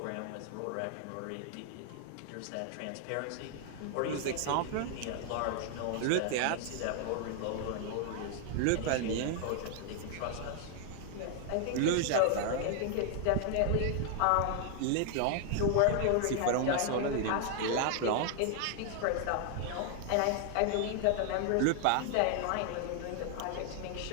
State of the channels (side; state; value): both; different; correlation 0.00